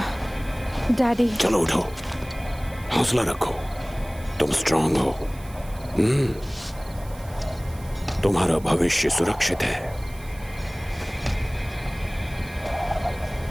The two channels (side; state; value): right; noise; hiss, 22 dB below the sound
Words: डैडी। चलो उठो, हौसला रखो, तुम स्ट्रांग हो। तुम्हारा भविष्य सुरक्षित है।